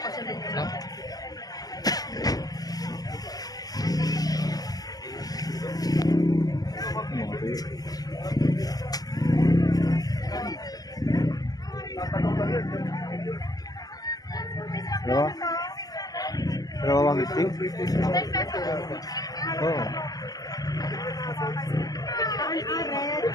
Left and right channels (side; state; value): right; late; 0.18 ms